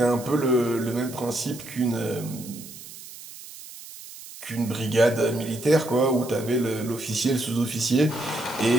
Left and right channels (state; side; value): noise; right; hiss, 15 dB below the sound